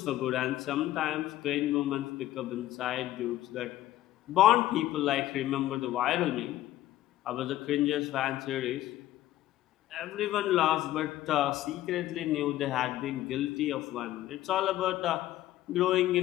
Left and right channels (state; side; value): quieter; right; 14.5 dB